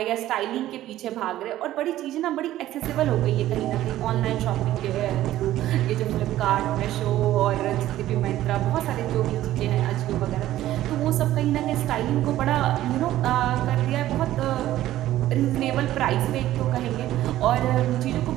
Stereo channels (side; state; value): left; quieter; 14.1 dB